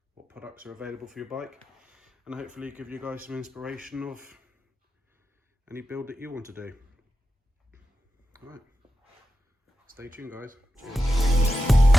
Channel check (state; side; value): normal; both; correlation 0.90